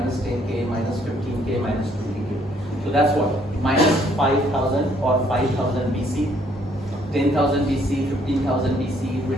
10K, minus 15K, minus 20K. So that's what? Minus 5,000 or 5,000 BC, 10,000 BC, 15,000 BC,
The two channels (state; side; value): normal; both; correlation 0.66